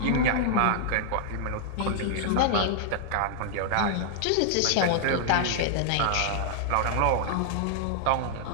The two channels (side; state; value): both; different; correlation -0.01